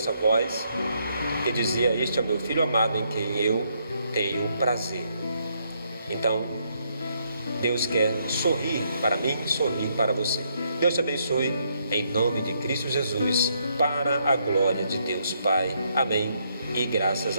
voz que dizia: "Este é o meu filho amado em quem eu tenho prazer". Então, Deus quer sorrir para mim, sorrir para você. Deus te abençoe, em nome de Cristo Jesus, para a glória de Deus Pai. Amém e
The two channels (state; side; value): inverted; both; correlation -0.74